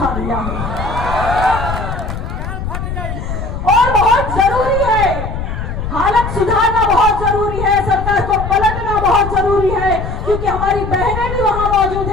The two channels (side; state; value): left; noise; rumble, 5 dB below the sound